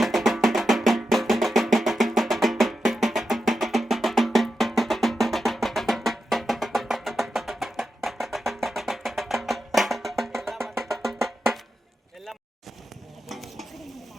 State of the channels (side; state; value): both; normal; correlation 0.89